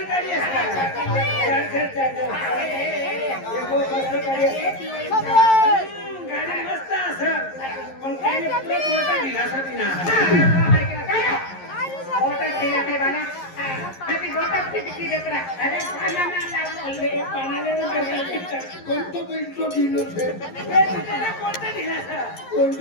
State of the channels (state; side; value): late; right; 11 ms